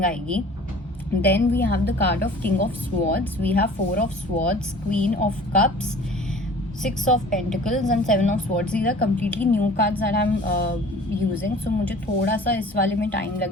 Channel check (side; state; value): both; normal; correlation 0.46